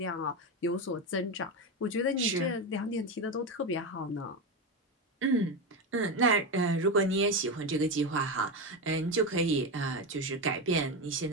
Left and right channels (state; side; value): normal; both; correlation 0.15